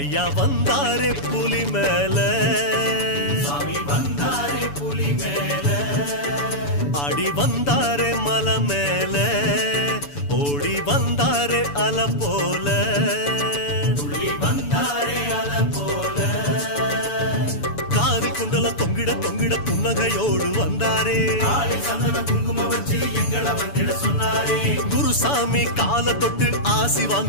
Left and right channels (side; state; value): right; late; 7.0 ms